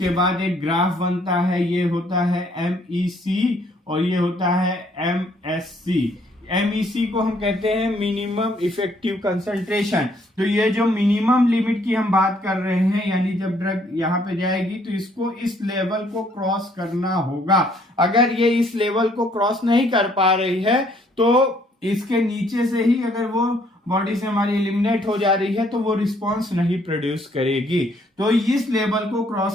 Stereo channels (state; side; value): normal; both; correlation 0.65